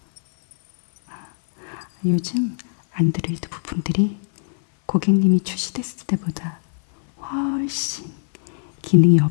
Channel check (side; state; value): right; silent; 65 dB below the other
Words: 요즘 안드로이드 부품들이 고객님이 출시됐을 때보다 훨씬 기능이